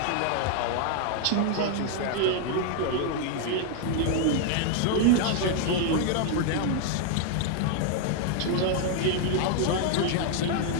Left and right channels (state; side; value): different; both; correlation 0.00